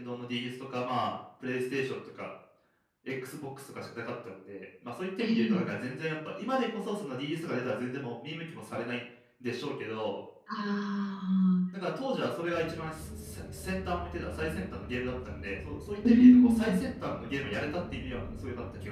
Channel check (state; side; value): identical; both; correlation 1.00